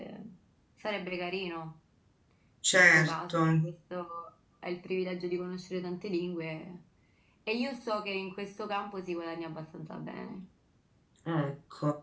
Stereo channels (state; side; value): identical; both; correlation 1.00